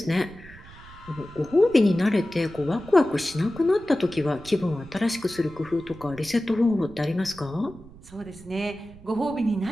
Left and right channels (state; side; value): noise; right; rumble, 20 dB below the sound